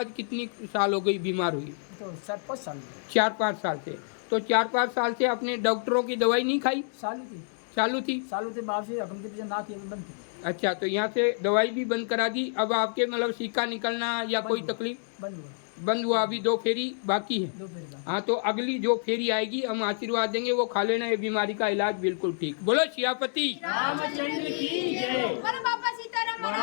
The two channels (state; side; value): silent; right; digital silence